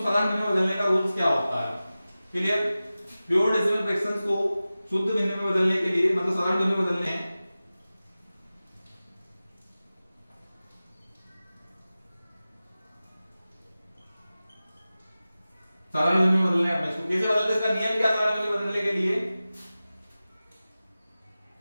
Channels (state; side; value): inverted; both; correlation -0.96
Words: भिन्न में बदलने का रूल्स क्या होता है। क्लियर, प्योर डेसिमल फ्रैक्शंस को शुद्ध भिन्न में बदलने के लिए मतलब साधारण भिन्न में बदलने हैं, साधारण भिन्न में बदलने हैं। इसको कैसे बदलते हैं, इसका नियम क्या साधारण भिन्न में बदलने के लिए,